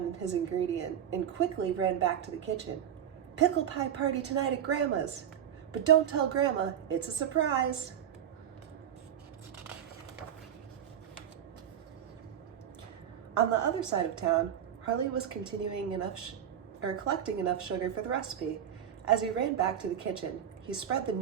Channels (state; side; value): quieter; left; 9.6 dB